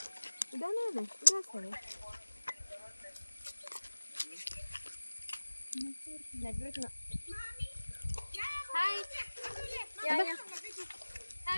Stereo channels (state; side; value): inverted; both; correlation -1.00